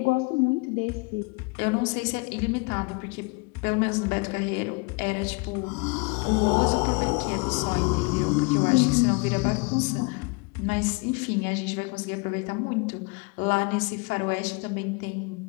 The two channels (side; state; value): right; quieter; 29.7 dB